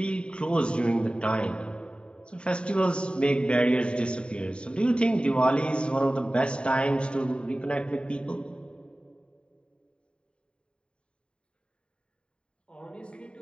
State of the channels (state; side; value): late; right; 0.052 ms